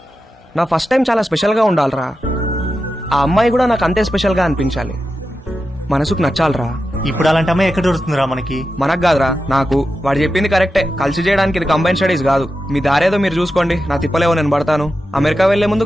నా ఫస్ట్ టైం చాలా స్పెషల్గా ఉండాలిరా. ఆ అమ్మాయి కూడా నాకు అంతే స్పెషల్గా అనిపించాలి. మనసుకు నచ్చాలిరా. ఇప్పుడు అలాంటి అమ్మాయి ఎక్కడ దొరుకుతుందిరా మనకి? మనకు కాదురా, నాకు. వాడు చెప్పింది కరెక్టే, కలిసి చేయడానికి ఇది కంబైన్ స్టడీస్ కాదు. మీ దారేదో మీరు చూసుకోండి, నా తిప్పలేవో నేను పడతాను. అమెరికా వెళ్లే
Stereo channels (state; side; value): normal; both; correlation 0.90